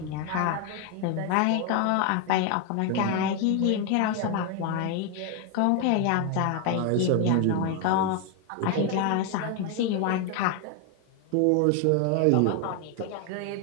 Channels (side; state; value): both; different; correlation 0.01